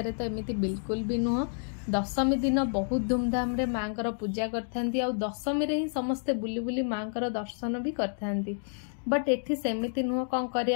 तो एमिति बिल्कुल भी नुह। दशमी दिन बहुत धूमधाम रे माँकर पूजा करथांती। आ दशमी रे ही समस्ते बुली बुली माँकर दर्शन भी करथांती। बट एठी सेमिति नुह। कौन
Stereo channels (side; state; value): right; silent; 58 dB below the other